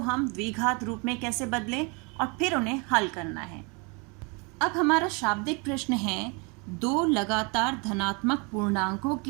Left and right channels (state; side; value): quieter; left; 31.7 dB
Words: द्विघात रूप में कैसे बदलें और फिर उन्हें हल करना है। अब हमारा शाब्दिक प्रश्न है, 2 लगातार धनात्मक पूर्णांकों